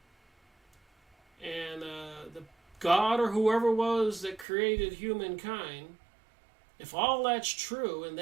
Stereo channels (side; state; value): left; drops out; at 4.5 s